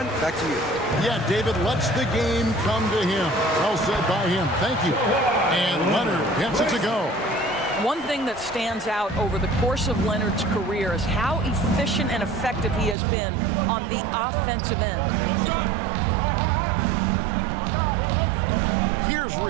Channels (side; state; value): left; drops out; at 13.0 s